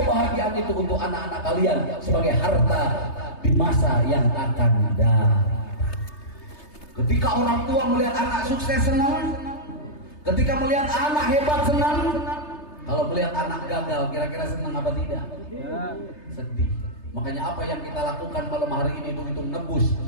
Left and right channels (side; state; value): right; late; 3.3 ms